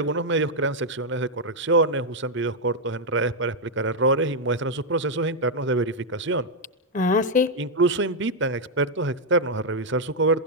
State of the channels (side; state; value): both; normal; correlation -0.01